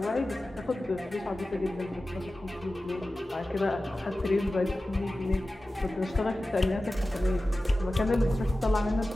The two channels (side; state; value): both; normal; correlation 0.95